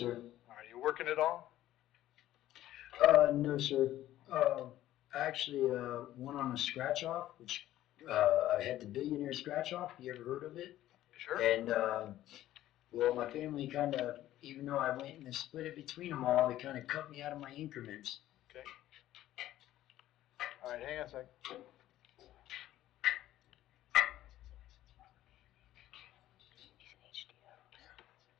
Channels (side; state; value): right; quieter; 13.8 dB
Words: Are you working at all? No, sir. Actually, went on a scratch off, which I had the billionaire scratch off. You ever heard of it? Sure. And well, my family kind of, even though I went and split it between them all, they kind of cut me out of my increments. Okay. All right, hang on a sec.